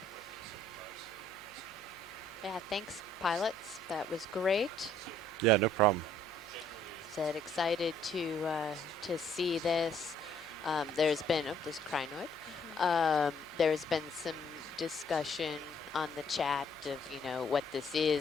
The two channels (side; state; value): left; noise; hum, 28 dB below the sound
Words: Yeah, thanks, pilots. That was great. Yeah, no problem. Said excited to see this. There's been there's crinoid. There's been some discussion on the chat of what this